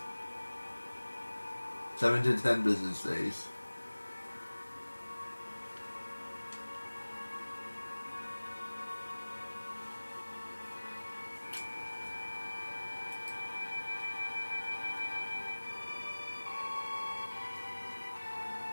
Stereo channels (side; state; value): both; inverted; correlation -1.00